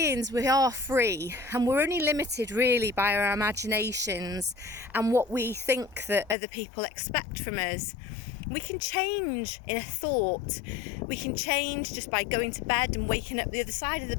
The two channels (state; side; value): drops out; right; at 6.4 s